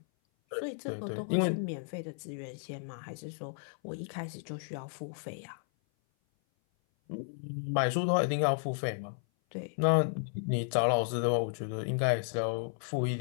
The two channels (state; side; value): silent; right; 56 dB below the other